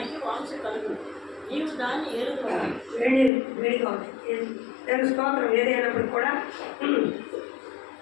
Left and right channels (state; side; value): drops out; right; at 3.3 s